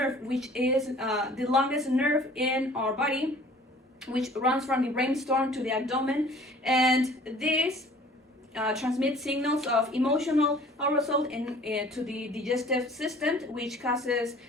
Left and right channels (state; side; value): normal; both; correlation 0.50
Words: which is the longest nerve in our body, which runs from the brainstem to the abdomen, and this transmit signals of emotional arousal to the digestive system, which causes